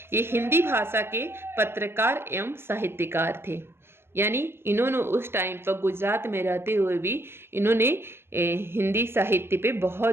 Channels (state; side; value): late; left; 0.12 ms